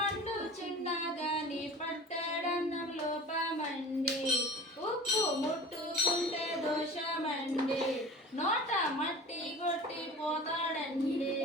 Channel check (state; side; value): normal; both; correlation 0.39